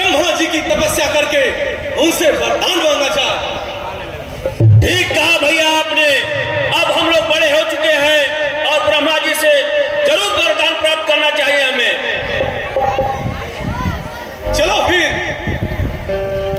जी की तपस्या करके उनसे वरदान मांगा जाए। ठीक कहा भैया आपने। अब हम लोग बड़े हो चुके हैं और ब्रह्मा जी से जरूर वरदान प्राप्त करना चाहिए हमें। चलो फिर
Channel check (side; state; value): both; identical; correlation 1.00